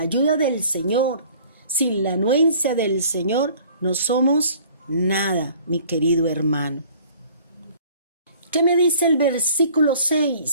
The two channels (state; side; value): inverted; both; correlation -0.52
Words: ayuda del Señor, sin la anuencia del Señor, no somos nada, mi querido hermano. ¿Qué me dice el versículo